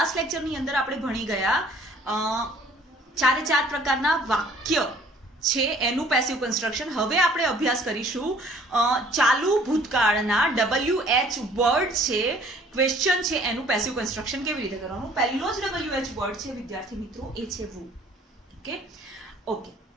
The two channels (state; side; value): normal; both; correlation 0.55